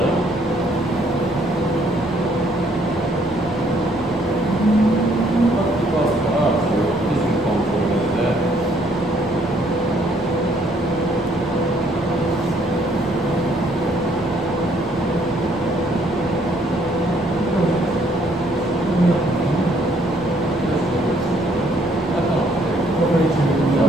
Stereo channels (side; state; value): both; normal; correlation 0.66